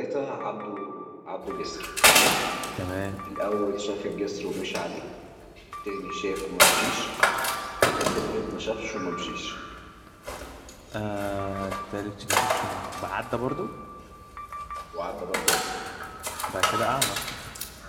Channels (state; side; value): identical; both; correlation 1.00